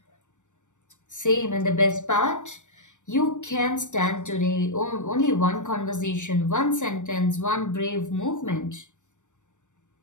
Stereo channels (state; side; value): late; right; 0.85 ms